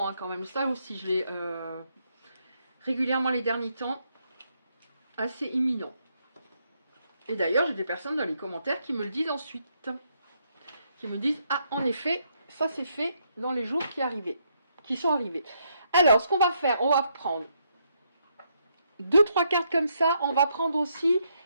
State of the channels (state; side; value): inverted; both; correlation -0.76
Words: hein, quand même. Ça aussi, je l'ai régulièrement les derniers temps. Assez imminent. Et d'ailleurs, j'ai des personnes dans les commentaires qui me le disent ensuite. Qui me disent, ah, en effet, ça c'est fait dans les jours qui sont arrivés. Alors, ce qu'on va faire, on va prendre 2-3 cartes comme ça. On va prendre aussi